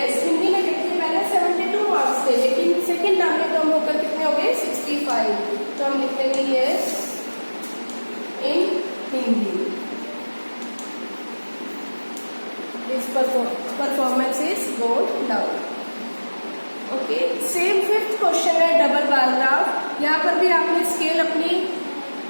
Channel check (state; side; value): inverted; both; correlation -1.00